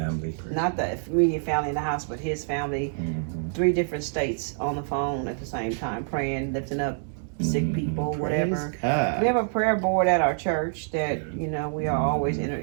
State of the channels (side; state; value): left; silent; 61 dB below the other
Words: Not the immediate family in the house, but his family. 3 different states on the phone at the same time, praying, lifting up sick people, whatever. Praise God. We have a prayer board at our church that, we are always in